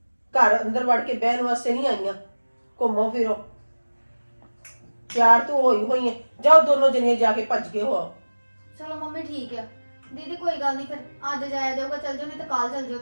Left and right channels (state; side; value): inverted; both; correlation -1.00